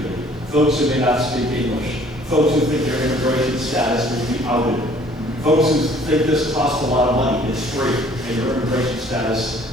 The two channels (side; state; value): both; normal; correlation 0.56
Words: folks who may not speak English, folks who think their immigration status will be outed, folks who think this costs a lot of money, it's free, and your immigration